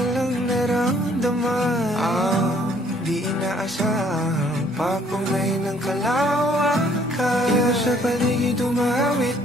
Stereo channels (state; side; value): noise; right; rumble, 25 dB below the sound